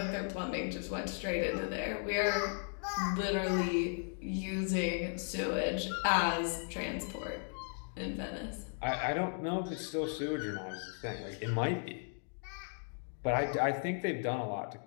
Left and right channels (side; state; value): right; silent; 54 dB below the other